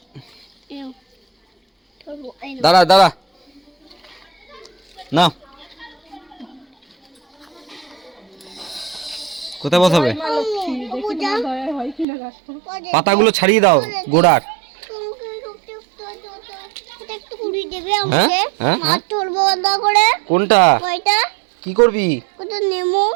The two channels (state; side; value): drops out; left; at 12.1 s